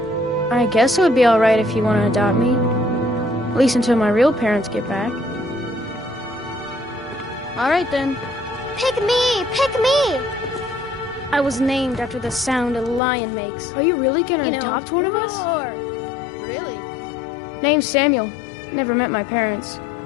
guess it would be all right if you want to adopt me. At least until my real parents get back. All right, then. Pick me! Pick me! I was named after the sound a lion makes. Are you really gonna adopt one of us? Really? Name's Samuel. Never met my parents.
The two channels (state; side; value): drops out; right; at 13.0 s